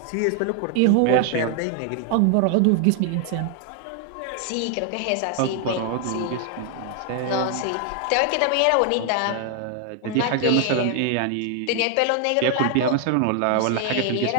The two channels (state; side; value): different; both; correlation 0.00